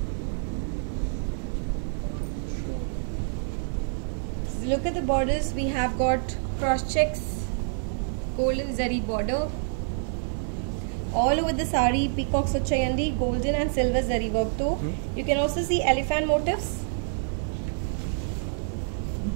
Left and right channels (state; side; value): silent; left; digital silence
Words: So look at the borders. We have got cross checks, golden zari border. All over the sari peacocks vachayandi, golden and silver zari work too. You can also see elephant motifs,